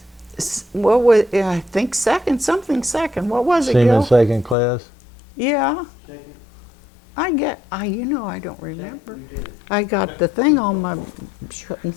What was, I think second. What was it, Seaman Gil? second class? Yeah. I don't remember. I got the thing on my,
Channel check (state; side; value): drops out; right; at 4.5 s